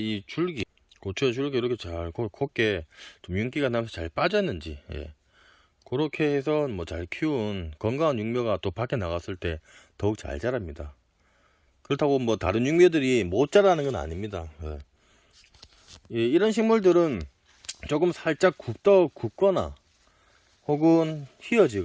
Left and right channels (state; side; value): identical; both; correlation 1.00